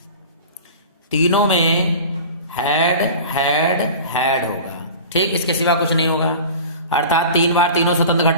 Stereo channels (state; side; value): inverted; both; correlation -0.37